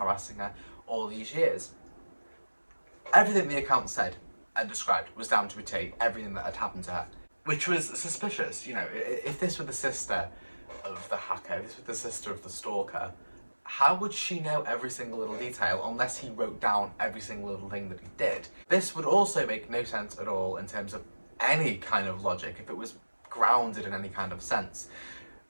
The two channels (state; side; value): inverted; both; correlation -1.00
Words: her all these years. Everything the account said and described was down to a T, everything that had happened to her, which was suspicious. You know, if this were the sister of the hacker, if this were the sister of the stalker, how would she know every single little detail unless he wrote down every single little thing that he did? This would also make no sense at all in terms of any kind of logic if it was grounded in any kind of sense.